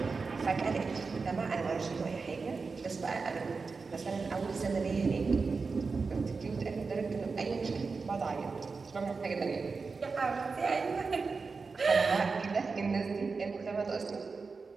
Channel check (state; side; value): quieter; left; 4.5 dB